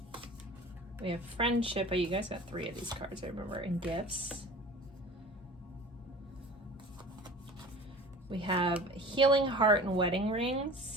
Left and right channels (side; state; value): both; normal; correlation 0.40